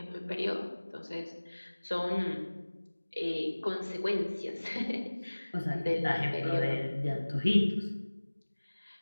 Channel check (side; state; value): both; inverted; correlation -1.00